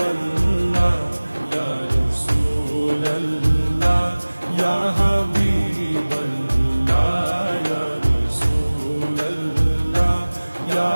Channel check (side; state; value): both; inverted; correlation -1.00